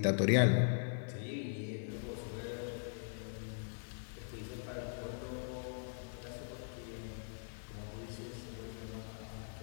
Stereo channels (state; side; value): silent; right; digital silence